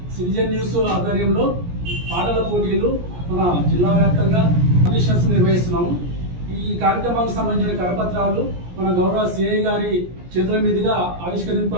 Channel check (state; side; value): late; left; 17 ms